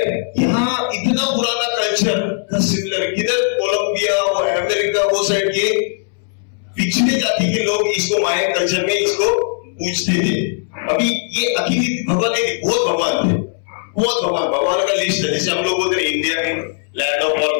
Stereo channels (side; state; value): right; silent; 67 dB below the other